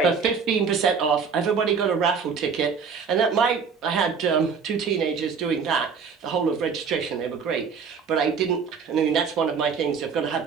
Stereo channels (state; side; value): quieter; left; 5.9 dB